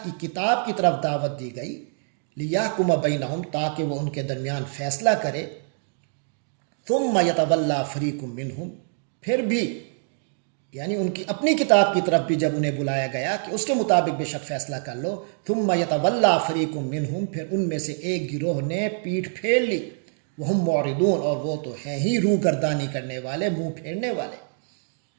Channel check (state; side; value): silent; left; 62 dB below the other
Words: کی کتاب کی طرف دعوت دی گئی، لیحکم بینہم، تاکہ وہ ان کے درمیان فیصلہ کرے، ثم یتولی فریق منہم، پھر بھی یعنی ان کی اپنی کتاب کی طرف بھی جب انہیں بلایا گیا کہ اس کے مطابق بے شک فیصلہ کر لو، ثم یتولی فریق منہم، پھر ان میں سے ایک گروہ نے پیٹھ پھیر لی، وہم معرضون، اور وہ تو ہیں ہی روح گردانی کرنے والے، منہ پھیرنے والے،